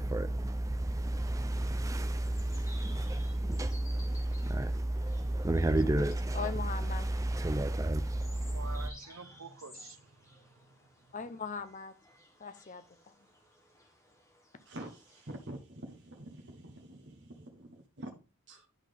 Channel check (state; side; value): normal; both; correlation 0.90